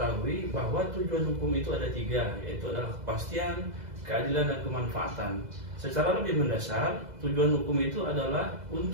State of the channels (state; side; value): late; left; 2.0 ms